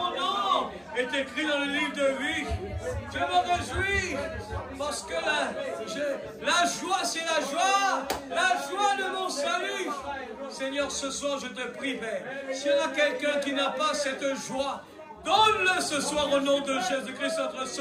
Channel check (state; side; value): identical; both; correlation 1.00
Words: nom est écrit dans le livre de vie. Je me réjouis parce que la joie, c'est la joie. La joie de mon salut. Seigneur, ce soir, je te prie, Père. S'il y en a quelqu'un qui n'a pas cette joie, donne-le ce soir au nom de Jésus-Christ, notre